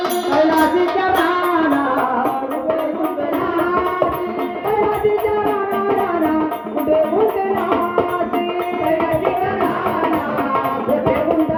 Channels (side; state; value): both; identical; correlation 1.00